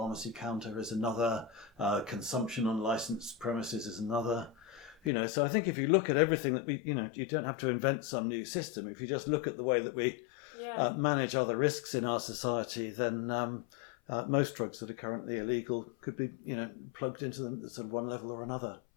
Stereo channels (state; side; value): drops out; right; at 5.1 s